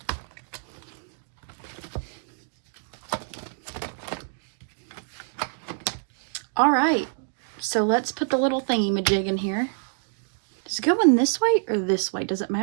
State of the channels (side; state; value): left; silent; digital silence